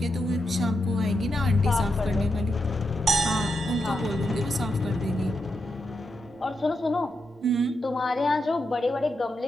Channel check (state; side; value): normal; both; correlation 0.85